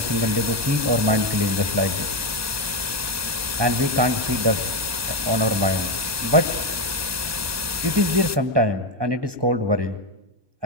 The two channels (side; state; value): left; late; 1.2 ms